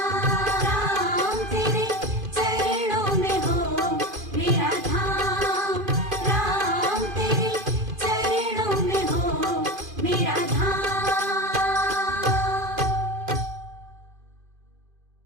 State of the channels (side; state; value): left; late; 2.5 ms